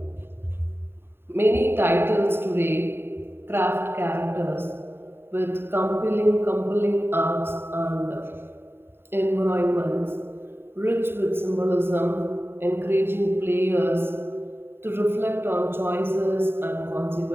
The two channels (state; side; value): late; left; 0.11 ms